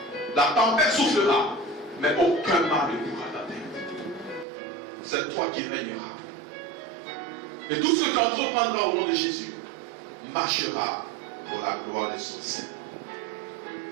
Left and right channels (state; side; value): drops out; left; at 4.5 s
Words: la tempête soufflera, mais aucun mal ne pourra t'atteindre. C'est toi qui régneras. Et tout ce que tu entreprendras au nom de Jésus marchera pour la gloire de son Seigneur.